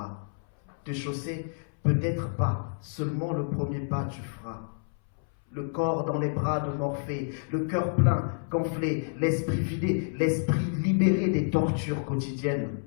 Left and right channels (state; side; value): silent; right; 59 dB below the other